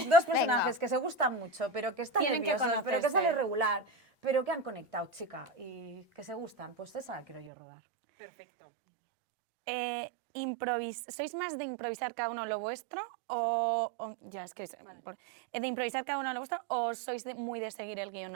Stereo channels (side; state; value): left; drops out; at 7.5 s